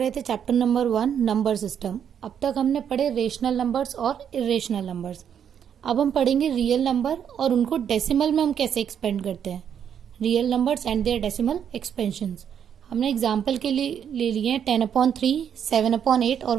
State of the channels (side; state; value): left; quieter; 8.5 dB